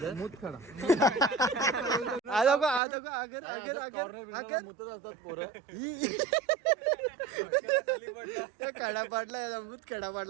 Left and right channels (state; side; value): drops out; left; at 2.8 s